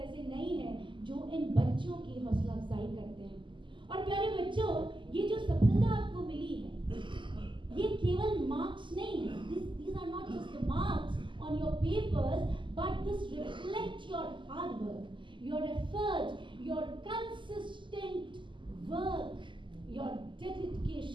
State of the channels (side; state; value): left; late; 0.24 ms